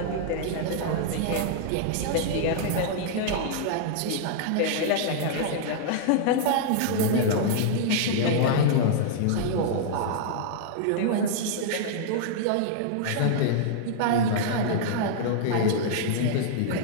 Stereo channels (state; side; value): different; both; correlation -0.01